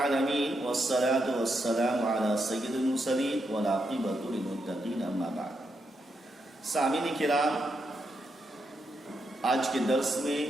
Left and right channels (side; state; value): both; normal; correlation 0.82